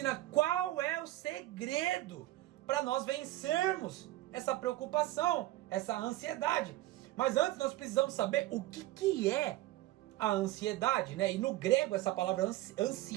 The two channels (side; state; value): left; quieter; 16.4 dB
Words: qual é o segredo para nós vencermos essa preocupação, essa ansiedade. Mas antes nós precisamos saber o que é a ansiedade, né? E no grego essa palavra